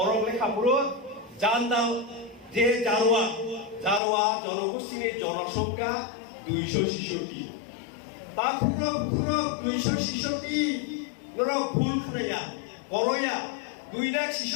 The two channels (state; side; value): drops out; right; at 4.0 s